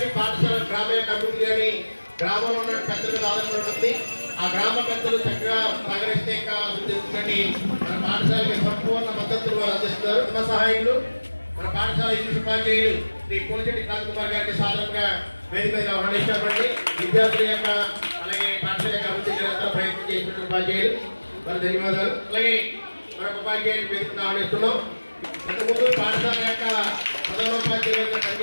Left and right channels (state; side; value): inverted; both; correlation -1.00